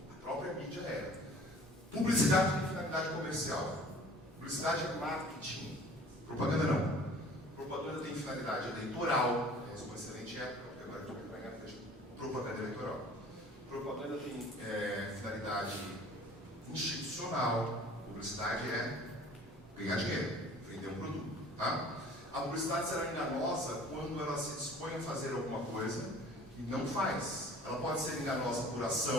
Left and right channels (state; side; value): normal; both; correlation 0.49